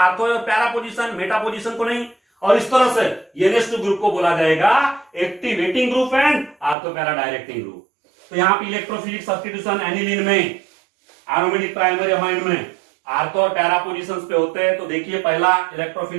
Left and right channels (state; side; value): drops out; left; at 6.8 s